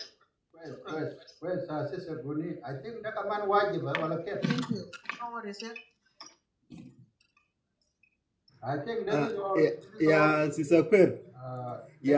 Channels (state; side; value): identical; both; correlation 1.00